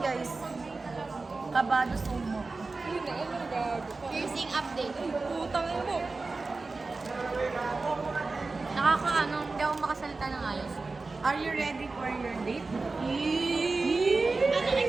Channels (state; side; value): quieter; left; 3.7 dB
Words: guys. Kabado sumo. Piercing update. Putang ina mo. Nakakaano, hindi ako makasalita ng ayos. Are you ready for your date? Anong